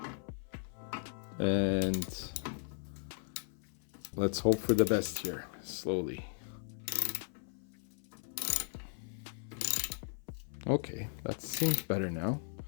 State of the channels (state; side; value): silent; right; 53 dB below the other